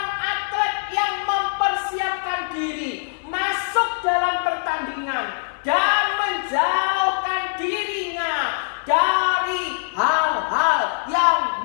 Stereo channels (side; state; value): right; silent; 58 dB below the other